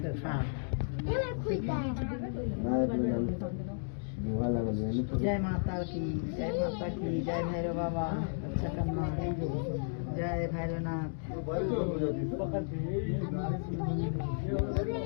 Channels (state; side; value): silent; right; digital silence